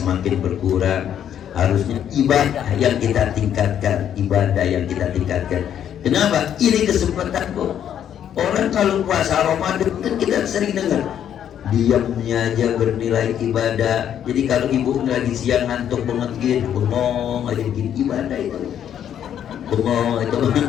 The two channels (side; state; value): right; quieter; 9.7 dB